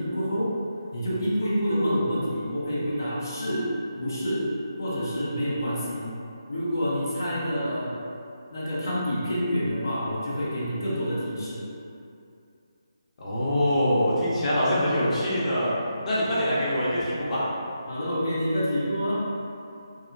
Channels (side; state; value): both; inverted; correlation -0.84